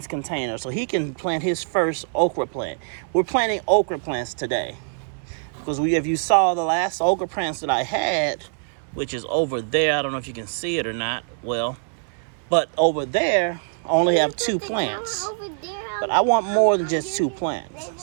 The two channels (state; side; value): silent; left; 63 dB below the other